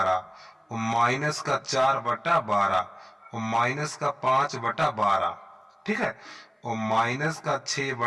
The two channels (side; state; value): both; identical; correlation 1.00